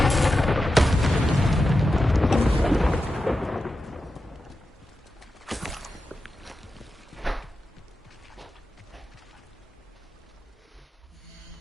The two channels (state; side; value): normal; both; correlation 0.91